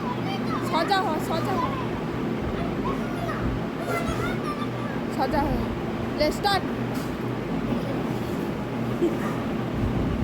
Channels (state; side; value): identical; both; correlation 1.00